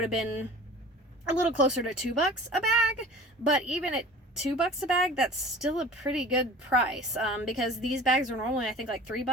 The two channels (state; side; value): normal; both; correlation 0.42